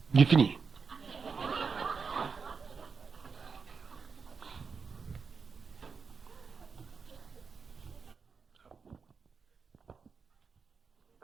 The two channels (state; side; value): quieter; left; 5.4 dB